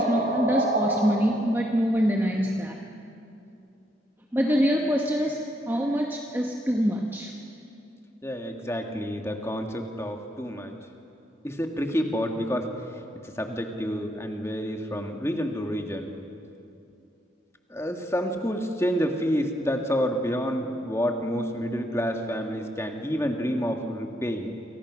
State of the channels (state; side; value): normal; both; correlation 0.75